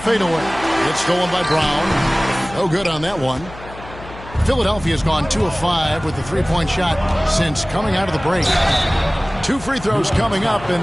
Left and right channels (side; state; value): left; noise; hum, 16 dB below the sound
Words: It's stolen by Brown. No good on that one. Philadelphia's gone 2 of 5 with the 3-point shot since coming out of the break. 2 free throws coming up,